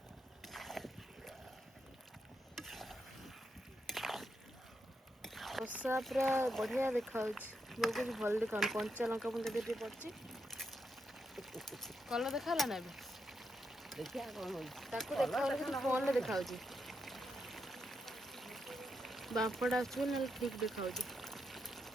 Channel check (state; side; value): normal; both; correlation 0.82